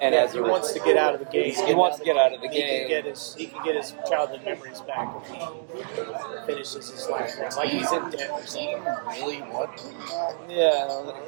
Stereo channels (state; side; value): silent; left; digital silence